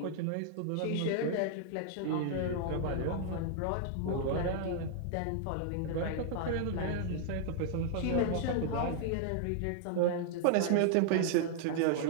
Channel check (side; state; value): both; different; correlation -0.01